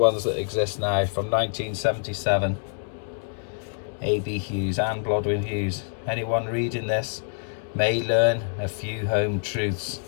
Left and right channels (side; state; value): right; silent; digital silence